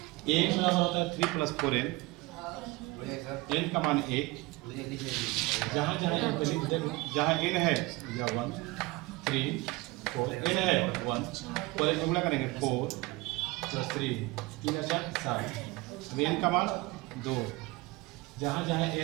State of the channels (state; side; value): quieter; left; 22.2 dB